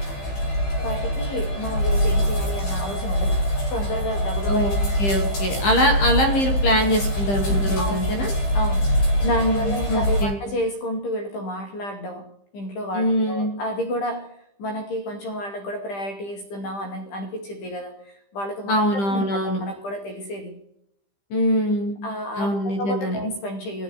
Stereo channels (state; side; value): late; right; 15 ms